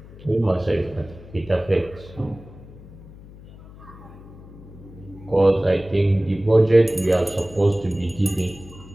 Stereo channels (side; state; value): left; noise; hum, 19 dB below the sound